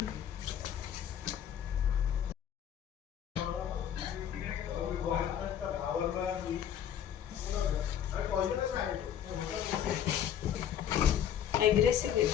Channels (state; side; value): quieter; right; 9.6 dB